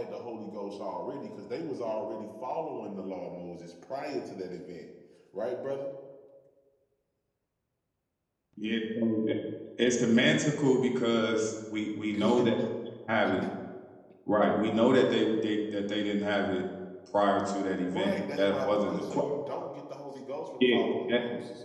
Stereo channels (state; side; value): identical; both; correlation 1.00